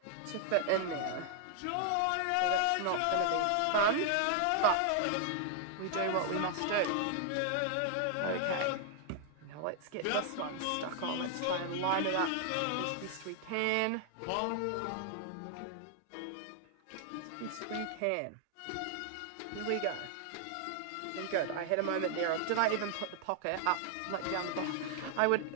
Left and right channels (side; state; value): both; different; correlation 0.00